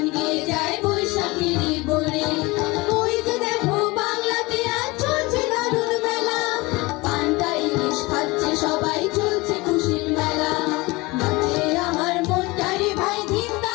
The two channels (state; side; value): quieter; right; 23.2 dB